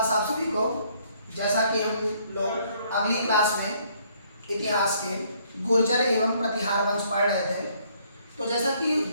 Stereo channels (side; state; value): both; inverted; correlation -0.66